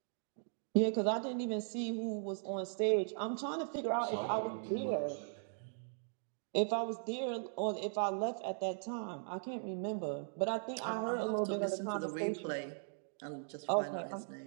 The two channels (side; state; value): left; silent; digital silence